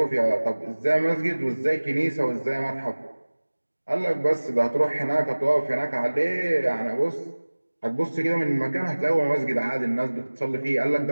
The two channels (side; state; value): both; inverted; correlation -1.00